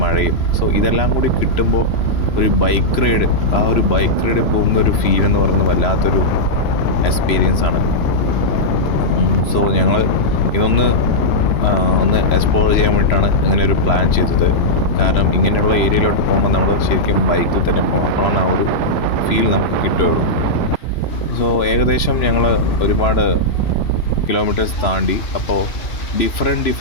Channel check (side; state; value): right; late; 3.0 ms